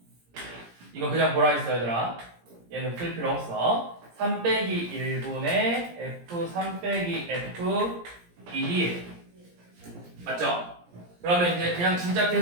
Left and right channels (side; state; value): left; late; 17 ms